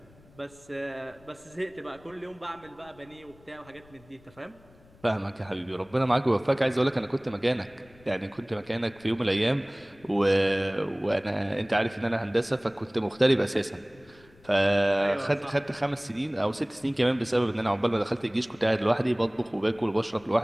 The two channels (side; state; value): left; noise; rumble, 27 dB below the sound